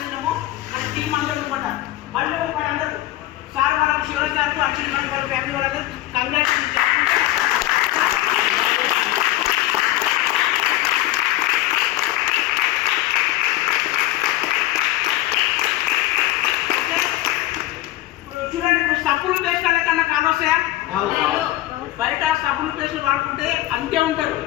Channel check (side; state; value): right; quieter; 15.8 dB